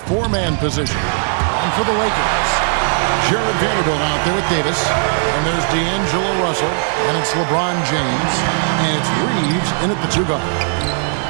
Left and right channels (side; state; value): left; silent; 57 dB below the other